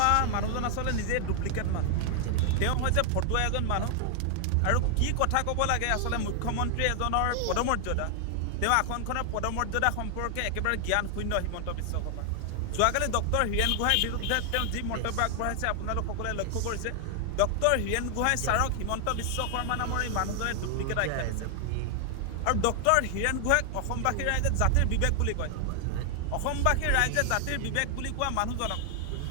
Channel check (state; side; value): different; both; correlation 0.00